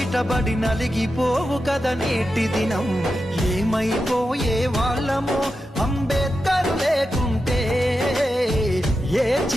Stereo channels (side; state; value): both; normal; correlation 0.90